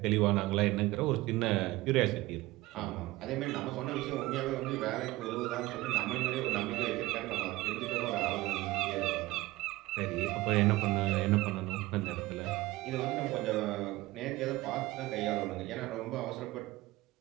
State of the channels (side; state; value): left; quieter; 18.9 dB